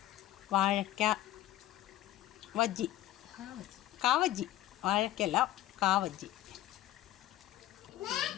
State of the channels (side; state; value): right; quieter; 14.2 dB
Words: വാഴക്ക വജ്ജി, കാവജ്ജി, വാഴക്കല്ല കാവജ്ജി,